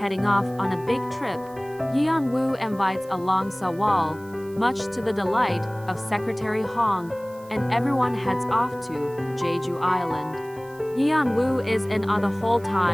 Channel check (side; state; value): right; noise; hiss, 25 dB below the sound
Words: off on a big trip. Yeon Woo invites along Sewol, much to the delight of Secretary Hong, and everyone heads off to Jeju Island. Yeon Woo is in on the whole